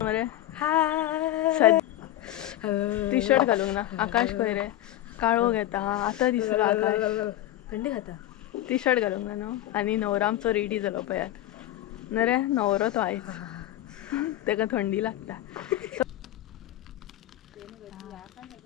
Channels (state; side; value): quieter; right; 13.9 dB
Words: मरे टी शर्ट घालूंक ना. आकाश खंय रे. काळो घेता आतां दिसलो आकाश. थंडी खाता. टी शर्ट घालूंक ना न्हू. आनी न्हवरो आमचो रेडी जालो पळयात न रे. न्हवरो तो आयज, तेका थंडी लागता.